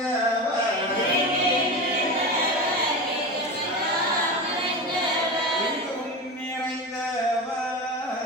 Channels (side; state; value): both; normal; correlation 0.25